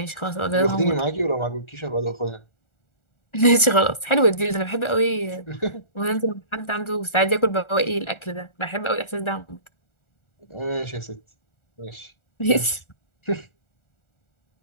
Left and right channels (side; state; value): right; late; 1.4 ms